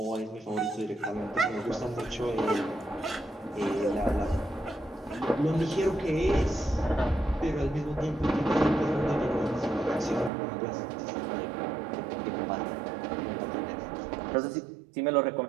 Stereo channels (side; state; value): left; drops out; at 10.3 s